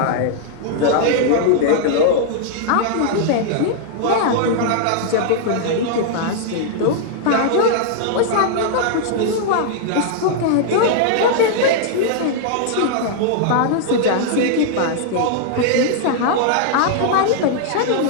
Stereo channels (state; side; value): different; both; correlation -0.01